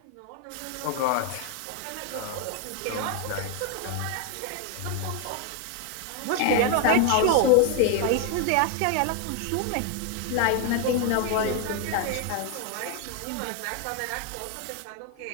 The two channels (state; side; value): different; both; correlation 0.01